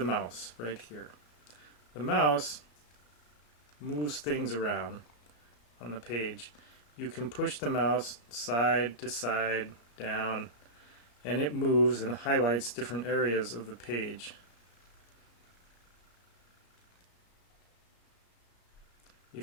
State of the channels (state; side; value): late; right; 34 ms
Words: mouse right here. The mouse moves things around on the page. You can push the mouse side to side, down, and it moves and highlights different areas of the page.